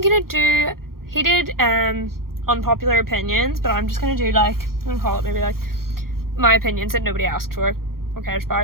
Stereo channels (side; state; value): left; late; 0.93 ms